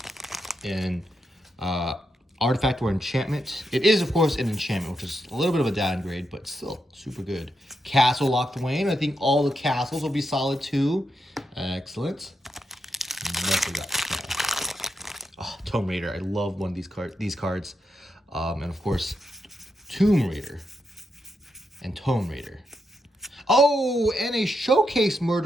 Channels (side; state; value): both; normal; correlation 0.83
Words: an artifact or enchantment. It is, of course, an enchantment, which is a little bit of a downgrade, but still super good. Castle locked away, and I think all the castles will be solid too. Excellent. What we got? Oh, Tomb Raider. I love one of these cards. And of course, Tomb Raider and Tomb Raider. Oh, and a Showcase